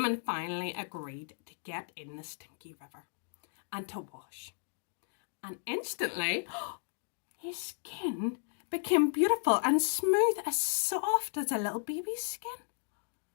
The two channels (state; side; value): silent; right; digital silence